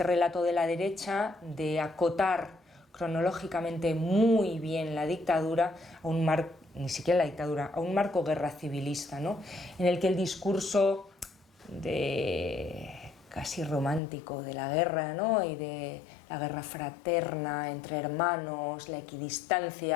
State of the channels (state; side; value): drops out; right; at 14.0 s